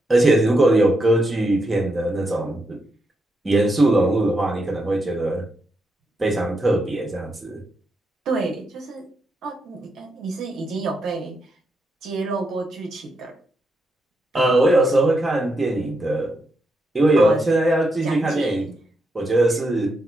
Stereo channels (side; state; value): both; normal; correlation 0.82